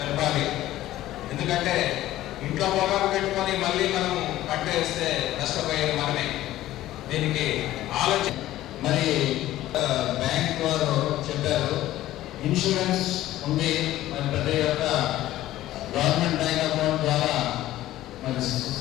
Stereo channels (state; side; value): quieter; right; 14.7 dB